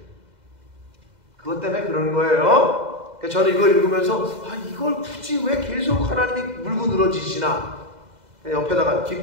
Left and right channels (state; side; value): late; left; 2.0 ms